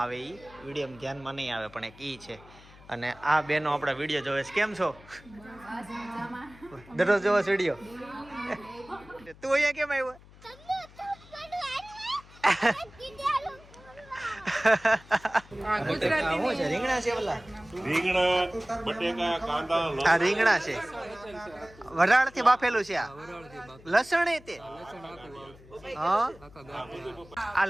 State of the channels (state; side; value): noise; left; hum, 22 dB below the sound